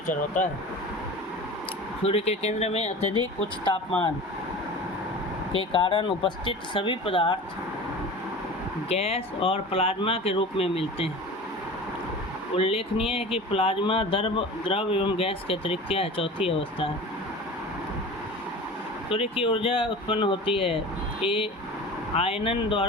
होता है। सूर्य के केंद्र में अत्यधिक उच्च तापमान के कारण उपस्थित सभी पदार्थ गैस और प्लाज्मा के रूप में मिलते हैं। उल्लेखनीय है कि प्लाज्मा द्रव एवं गैस के अतिरिक्त क्या है, चौथी अवस्था है। सूर्य की ऊर्जा उत्पन्न होती है: ए आयनन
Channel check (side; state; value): both; normal; correlation 0.36